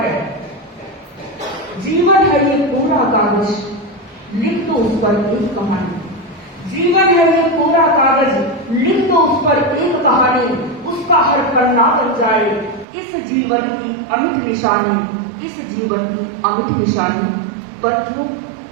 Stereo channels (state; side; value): drops out; left; at 12.9 s